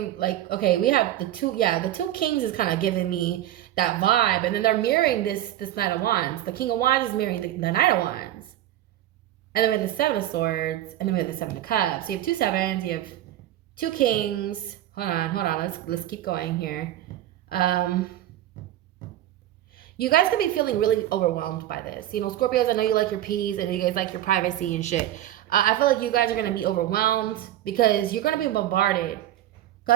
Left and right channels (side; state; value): left; quieter; 13.2 dB